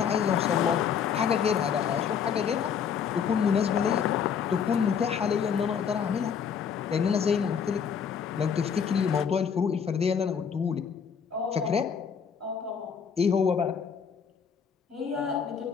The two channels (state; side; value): quieter; right; 7.1 dB